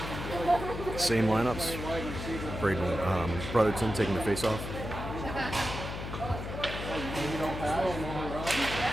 Same lineups. Braden Brotherton taking the face-off.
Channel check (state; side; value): noise; left; hum, 6 dB below the sound